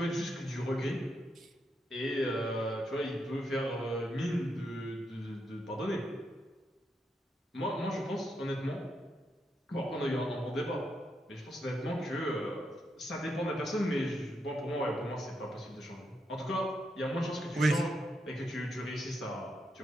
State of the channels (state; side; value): normal; both; correlation 0.82